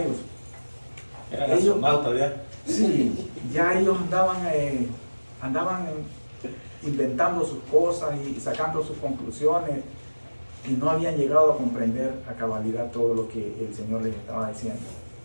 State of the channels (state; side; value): inverted; both; correlation -1.00